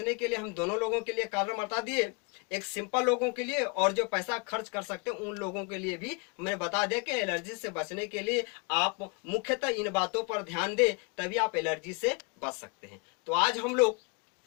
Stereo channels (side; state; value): right; quieter; 32.5 dB